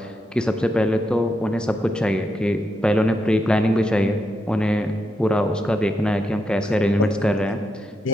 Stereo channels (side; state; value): both; normal; correlation 0.83